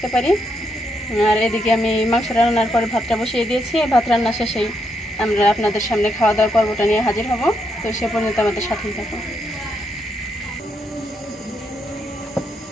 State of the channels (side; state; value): both; normal; correlation 0.78